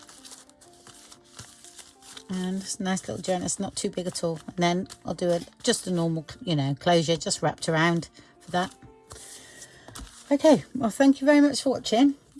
And it's a nice little journal, it's not too big at all. And then I'll do just a normal, closure, just wrapped around for that. Okay, well, thank you very much for watching,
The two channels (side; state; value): both; identical; correlation 1.00